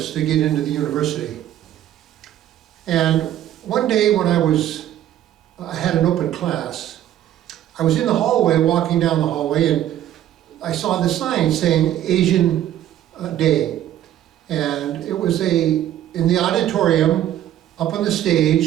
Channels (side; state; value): left; quieter; 11.9 dB